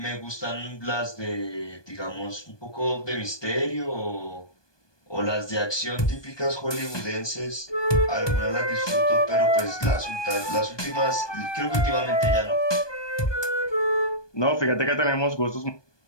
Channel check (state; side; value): late; right; 1.2 ms